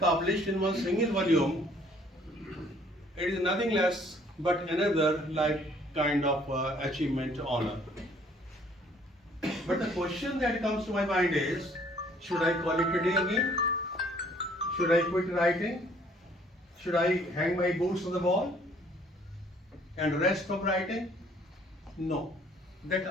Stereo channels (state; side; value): normal; both; correlation 0.60